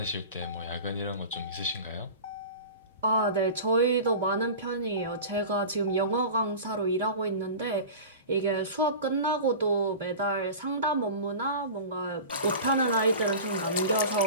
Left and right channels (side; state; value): both; inverted; correlation -0.34